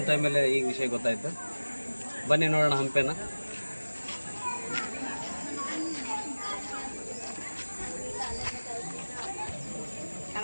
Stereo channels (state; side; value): inverted; both; correlation -1.00